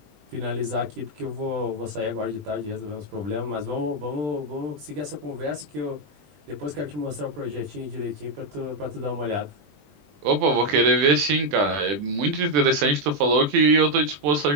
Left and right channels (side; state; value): left; late; 20 ms